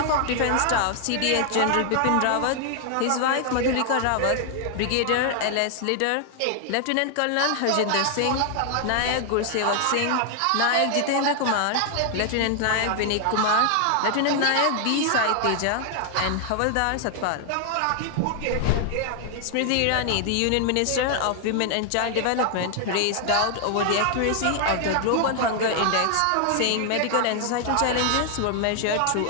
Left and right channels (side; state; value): both; different; correlation 0.00